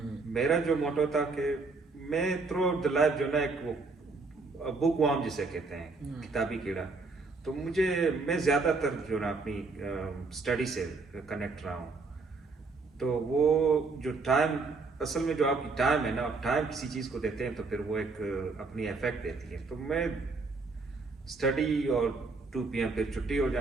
मेरा जो मोटो था कि मैं थ्रू आउट द लाइफ जो ना एक वो बुक वार्म जिसे कहते हैं, किताबी कीड़ा, तो मुझे मैं ज़्यादातर जो ना अपनी स्टडी से कनेक्ट रहा हूँ। तो वो जो टाइम, असल में जो आपकी टाइम है ना, आप टाइम किसी चीज़ को देते हैं तो फिर वो एक अपनी इफेक्ट देती है। तो मैं स्टडी और 2 PM फिर छुट्टी हो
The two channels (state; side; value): quieter; left; 3.9 dB